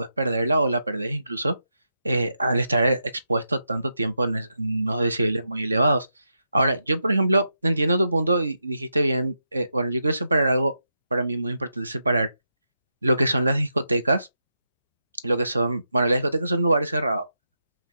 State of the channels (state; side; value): inverted; both; correlation -0.85